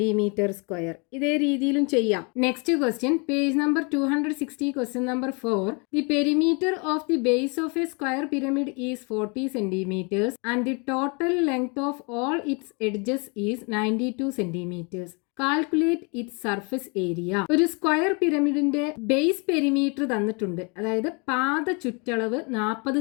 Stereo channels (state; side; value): quieter; right; 32.2 dB